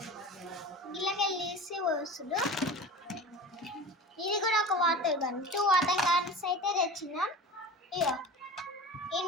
గిల్లకెళ్ళేసి వస్తుడు. ఇది కూడా ఒక వాటర్ గన్. 2 వాటర్ గన్స్ అయితే తెచ్చినాం. ఇగో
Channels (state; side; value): normal; both; correlation 0.35